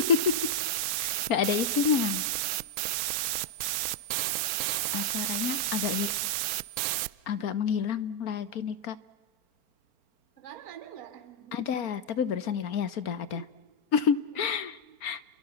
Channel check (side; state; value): right; late; 4.4 ms